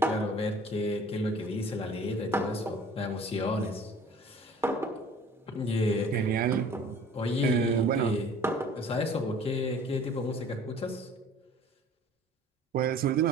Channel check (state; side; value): normal; both; correlation 0.49